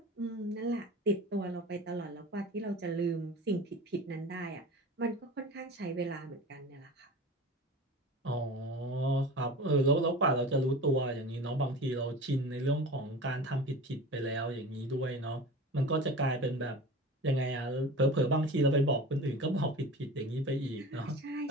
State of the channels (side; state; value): both; normal; correlation 0.35